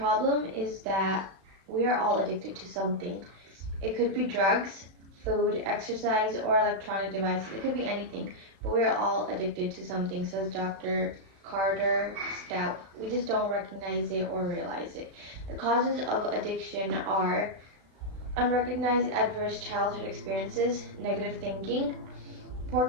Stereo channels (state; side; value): late; left; 36 ms